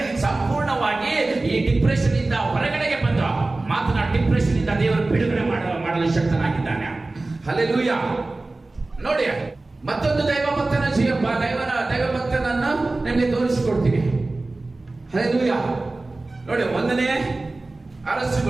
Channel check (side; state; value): left; quieter; 3.1 dB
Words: ಈ ಡಿಪ್ರೆಷನ್ ಇಂದ ಹೊರಗಡೆಗೆ ಬಂದು ಡಿಪ್ರೆಷನ್ ಇಂದ ದೇವರು ಬಿಡುಗಡೆ ಮಾಡಲು ಶಕ್ತನಾಗಿದ್ದಾನೆ. ಹಲ್ಲೆಲೂಯಾ. ನೋಡಿ, ಮತ್ತೊಂದು ದೈವಭಕ್ತನ ದೈವಭಕ್ತನನ್ನು ನಿಮಗೆ ತೋರಿಸಿಕೊಡ್ತೀನಿ. ಹಲ್ಲೆಲೂಯಾ. ನೋಡಿ, 1ನೇ